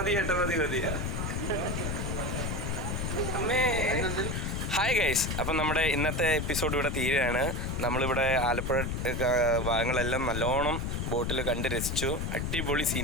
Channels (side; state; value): left; noise; rumble, 1 dB below the sound